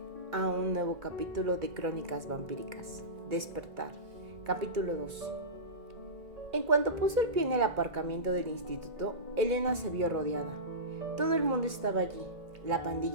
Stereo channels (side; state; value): left; late; 2.2 ms